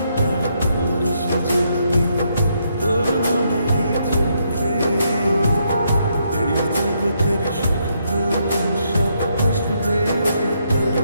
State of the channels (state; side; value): inverted; both; correlation -0.76